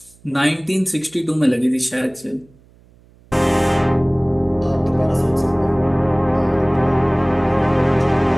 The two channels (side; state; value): right; noise; hum, 29 dB below the sound